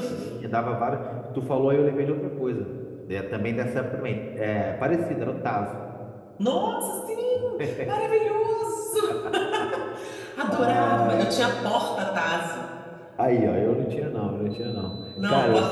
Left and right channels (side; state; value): both; identical; correlation 1.00